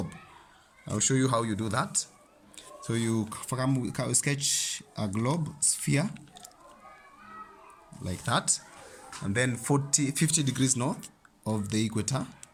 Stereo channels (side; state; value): both; identical; correlation 1.00